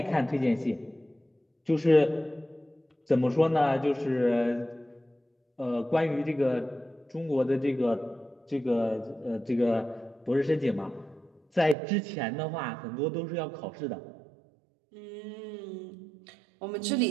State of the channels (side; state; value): left; drops out; at 11.8 s